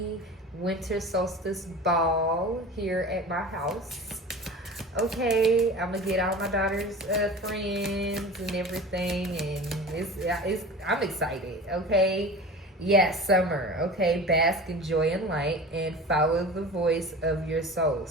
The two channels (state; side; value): normal; both; correlation 0.35